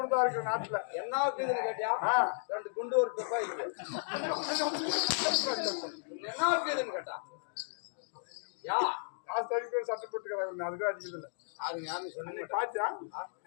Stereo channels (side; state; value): right; silent; digital silence